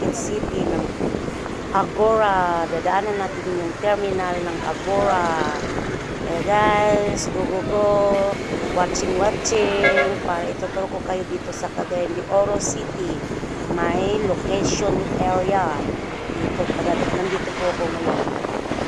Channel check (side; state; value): both; identical; correlation 1.00